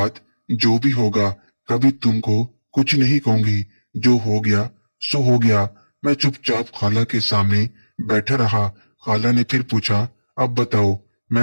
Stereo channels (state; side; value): inverted; both; correlation -1.00